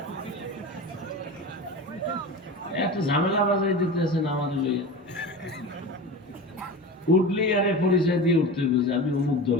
এত ঝামেলা বাজাই দিতেছেন আমাদের লইয়া। উঠলেই আরে পরিচয় দিয়ে উঠতে হবে যে আমি অমুক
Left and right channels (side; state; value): both; normal; correlation 0.29